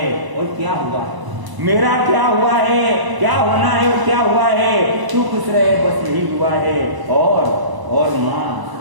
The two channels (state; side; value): late; left; 1.0 ms